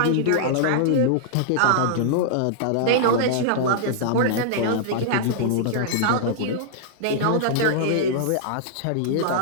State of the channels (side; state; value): both; different; correlation -0.01